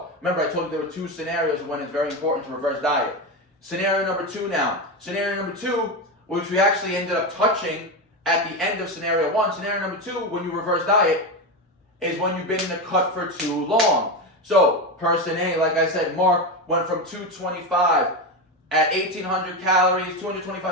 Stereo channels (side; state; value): both; normal; correlation 0.16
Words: Remember, I told you there were 2 scenarios when it's very important to reverse diet. Scenario number 2 now. Scenario number 2, which we actually ended up touching at the end of scenario 1. Scenario number 2, when you reverse diet, is when you've been in a cut for too long. So, person A, like I said, Mark went from 225 at 1,800 calories,